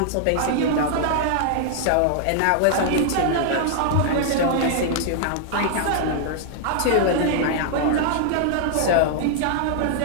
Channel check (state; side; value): different; both; correlation -0.01